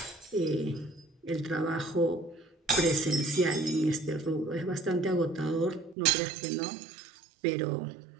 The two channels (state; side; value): drops out; left; at 6.0 s